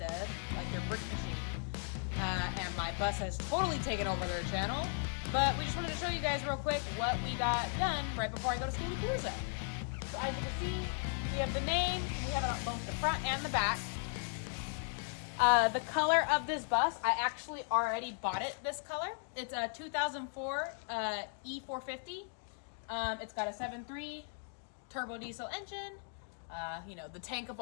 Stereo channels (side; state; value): right; silent; 53 dB below the other